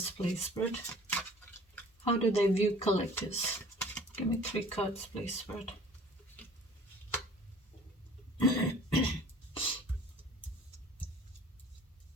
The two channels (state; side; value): normal; both; correlation 0.49